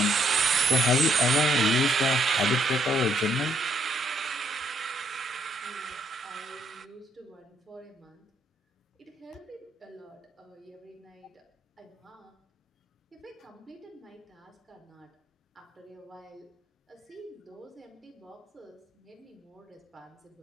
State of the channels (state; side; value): normal; both; correlation 0.71